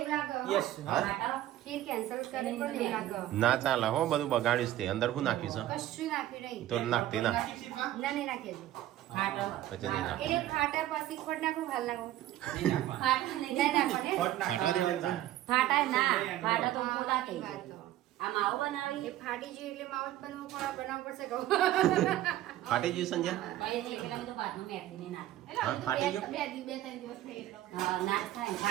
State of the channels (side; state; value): left; quieter; 13.8 dB